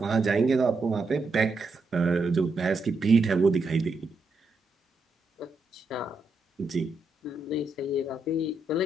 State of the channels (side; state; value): left; quieter; 3.1 dB